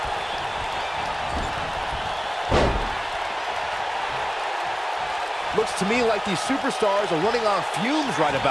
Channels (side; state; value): both; identical; correlation 1.00